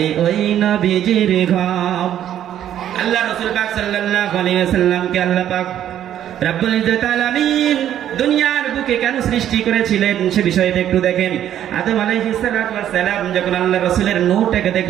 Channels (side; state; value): left; quieter; 10.9 dB